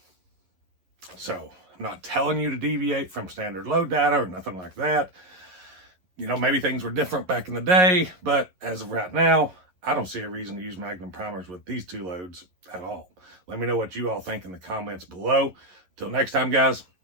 So I'm not telling you to deviate from standard load data or nothing like that. You know, maybe things were different back in the day, but as of right now, I don't see a reason to use Magnum primers with these two loads at all. Let me know what you all think in the comments below. Till next time, guys,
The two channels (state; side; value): late; left; 11 ms